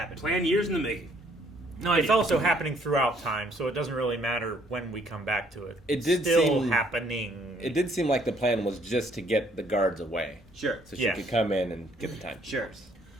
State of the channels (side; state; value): both; normal; correlation 0.64